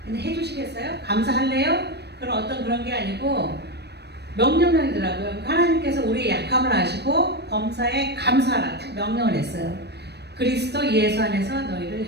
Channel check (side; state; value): left; late; 0.48 ms